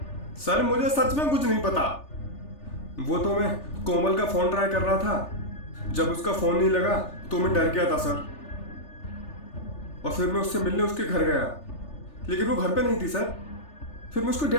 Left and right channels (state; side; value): late; right; 3.4 ms